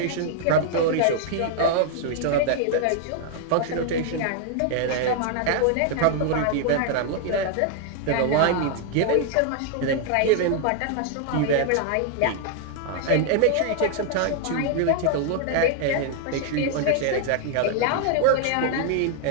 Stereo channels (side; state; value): both; different; correlation 0.00